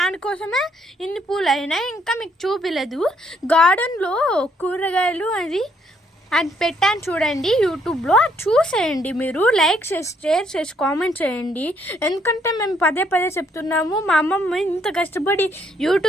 ఇన్ని పూలు అయినాయి. ఇంకా మీకు చూపిలేదు. గార్డెన్లో కూరగాయలు అది పెట్టాను చూడండి యూట్యూబ్లో, చూసేయండి. మీరు లైక్ చేసి షేర్ చేసి కామెంట్ చేయండి. ఎందుకంటే మేము పదే చెప్తున్నాము, మా అమ్మమ్మ ఇంత కష్టపడి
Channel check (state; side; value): normal; both; correlation 0.69